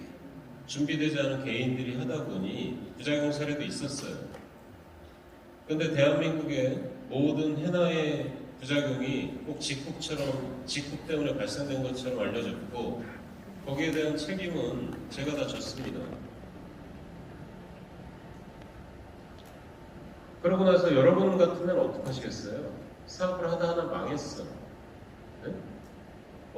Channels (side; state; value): both; identical; correlation 1.00